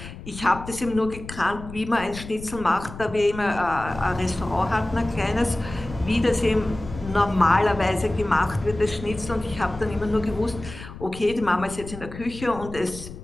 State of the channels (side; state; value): left; noise; rumble, 13 dB below the sound